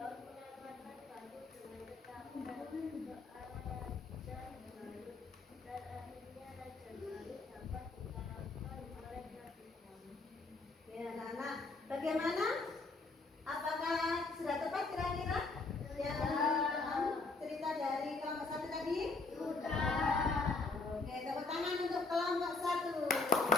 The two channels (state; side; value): quieter; right; 3.7 dB